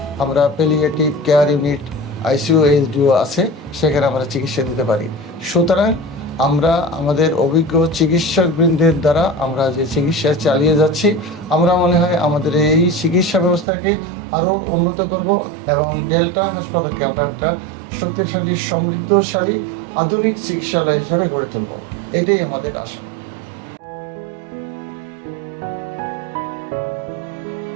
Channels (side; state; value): left; drops out; at 13.7 s